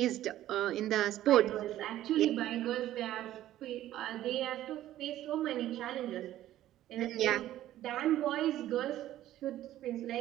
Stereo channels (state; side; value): quieter; left; 13.5 dB